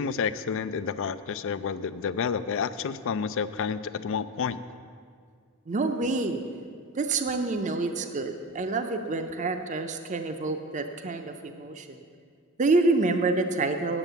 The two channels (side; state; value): both; normal; correlation 0.26